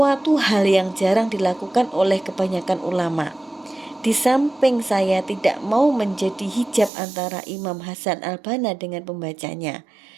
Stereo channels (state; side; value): drops out; left; at 6.9 s